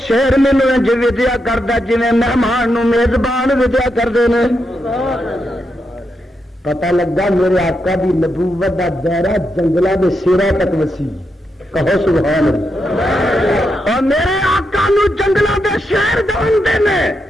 شیر مینو انج ودیا کرتا جی مہمان نو میزبان ودیا کرتے ہیں. پتہ لگا میرے آقا دی نبوت دا دائرہ جنگلہ دے سیرا تک وسیع. کہو سبحان اللہ. اور میرے آقا نو جنگلوں دے شہر جانتے نے،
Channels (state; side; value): normal; both; correlation 0.84